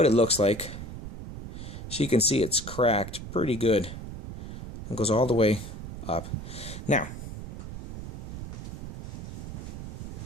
it looks like. So you can see it's cracked pretty good. It goes all the way up. Now,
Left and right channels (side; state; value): right; noise; rumble, 8 dB below the sound